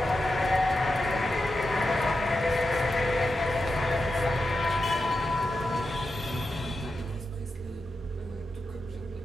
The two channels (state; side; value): normal; both; correlation 0.89